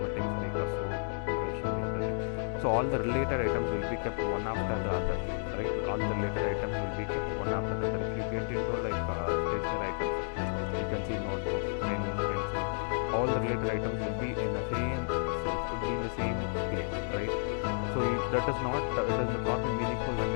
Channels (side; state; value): right; silent; digital silence